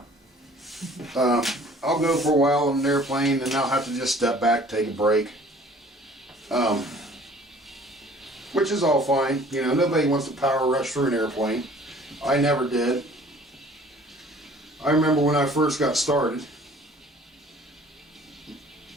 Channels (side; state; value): both; normal; correlation 0.52